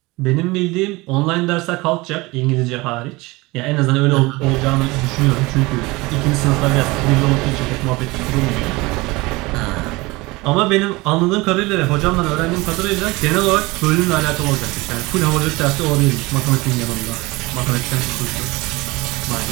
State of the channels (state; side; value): quieter; left; 22.7 dB